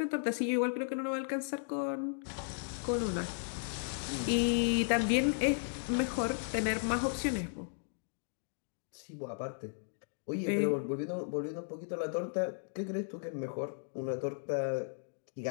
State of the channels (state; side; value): silent; right; digital silence